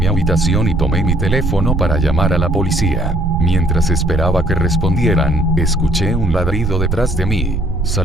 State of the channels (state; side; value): noise; right; rumble, 3 dB below the sound